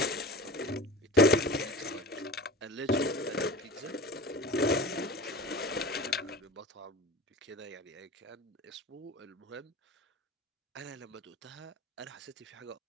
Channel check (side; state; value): both; normal; correlation 0.34